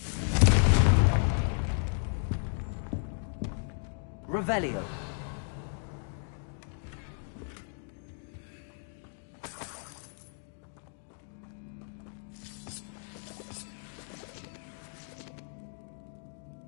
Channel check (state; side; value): silent; right; 55 dB below the other